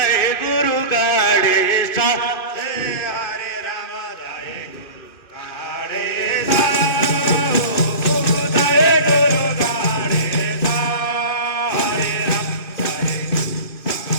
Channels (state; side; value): late; right; 2.6 ms